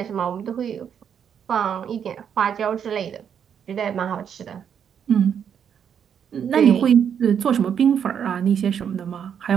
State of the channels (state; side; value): quieter; left; 8.1 dB